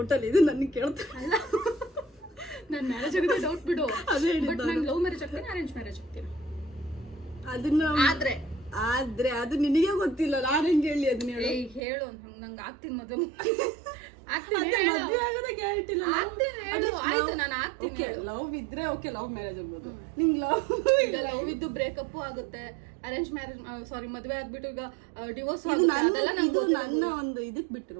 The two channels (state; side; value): drops out; left; at 11.8 s